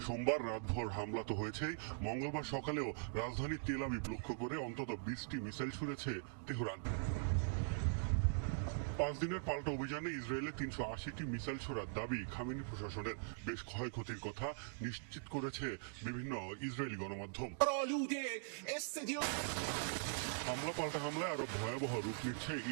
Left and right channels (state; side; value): silent; left; digital silence